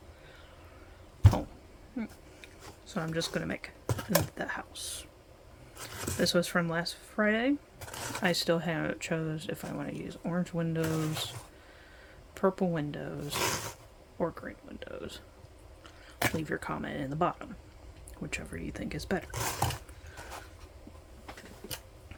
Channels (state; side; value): identical; both; correlation 1.00